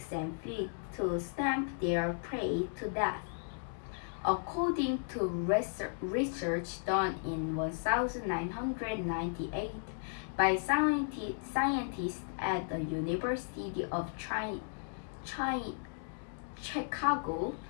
and feet to stamp their prey to death. According to research done in 1998 by scientists at the University of Chicago,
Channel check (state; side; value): silent; right; digital silence